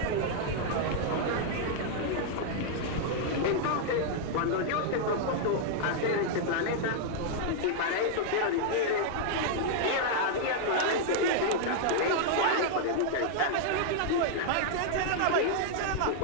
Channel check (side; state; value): both; different; correlation -0.01